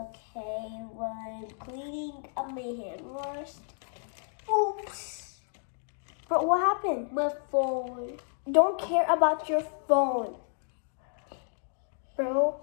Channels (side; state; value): right; silent; 57 dB below the other